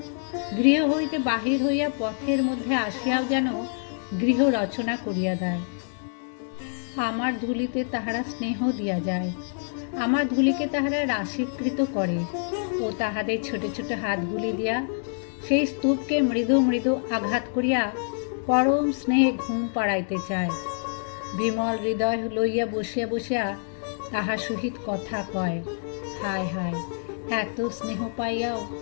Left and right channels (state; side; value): silent; right; 61 dB below the other